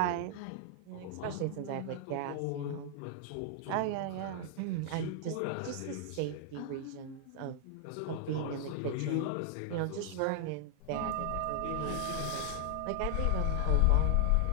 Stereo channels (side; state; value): both; different; correlation 0.00